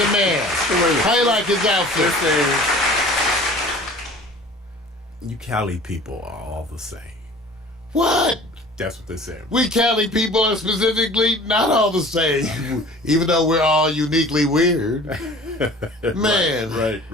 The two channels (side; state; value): both; normal; correlation 0.45